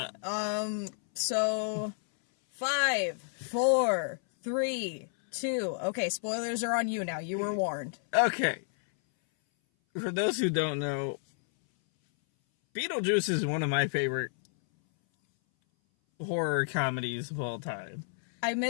So, 5, 4, 3, 2. Okay, spoilers are on you now. You were warned. Okay. For those who don't know, Beetlejuice is one of my favorite horror comedies of all time. I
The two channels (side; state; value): right; silent; 57 dB below the other